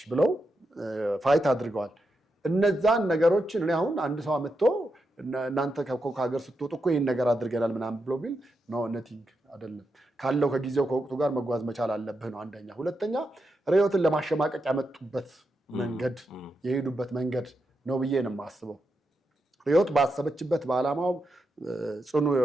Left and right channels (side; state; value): both; normal; correlation 0.85